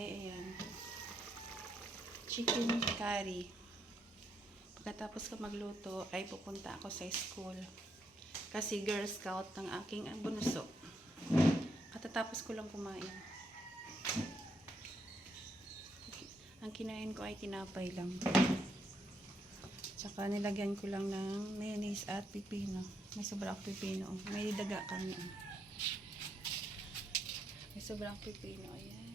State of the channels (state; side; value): normal; both; correlation 0.77